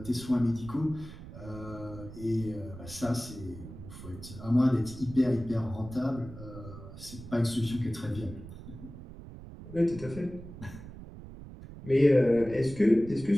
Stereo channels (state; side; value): noise; right; rumble, 14 dB below the sound